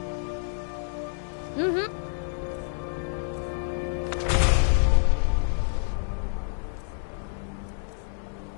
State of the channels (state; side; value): silent; right; 60 dB below the other